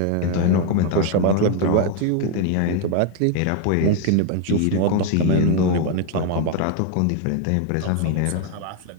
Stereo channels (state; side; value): different; both; correlation 0.01